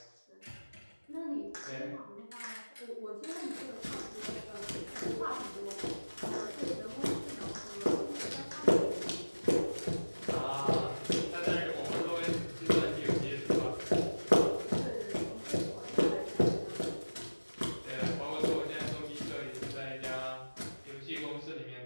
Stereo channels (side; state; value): both; inverted; correlation -1.00